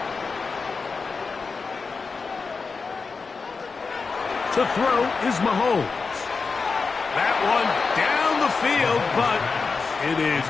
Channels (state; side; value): quieter; right; 4.6 dB